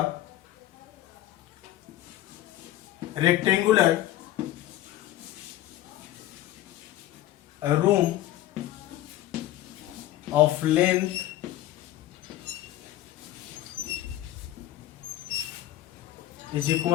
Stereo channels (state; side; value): quieter; right; 14.3 dB